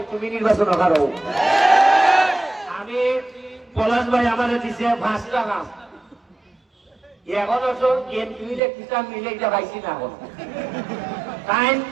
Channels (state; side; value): drops out; left; at 8.6 s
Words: তুমি নির্বাচন করো। আমি পলাশ ভাই আমার দিছে 5 টাকা, এখন এমপিলে কিতাব মিলে এটা পাইছি না। এখন টাইম